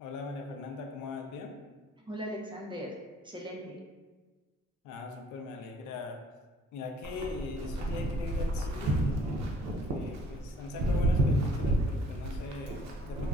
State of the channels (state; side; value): normal; both; correlation 0.58